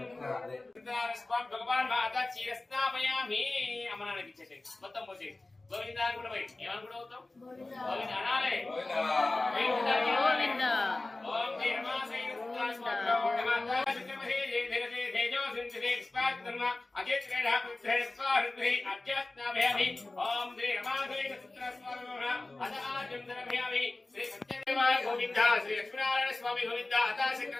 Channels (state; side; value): quieter; right; 3.0 dB